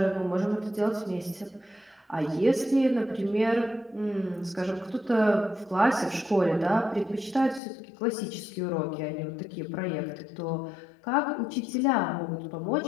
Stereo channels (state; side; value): drops out; right; at 7.6 s